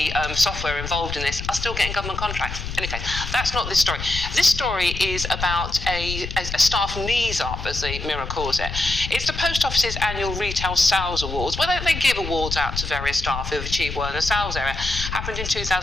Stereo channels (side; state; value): left; noise; rumble, 7 dB below the sound